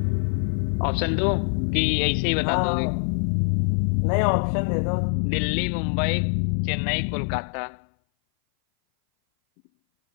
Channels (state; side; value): silent; right; 58 dB below the other